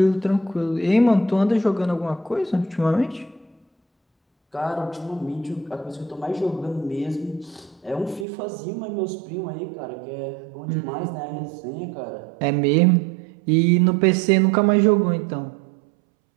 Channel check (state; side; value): drops out; left; at 8.2 s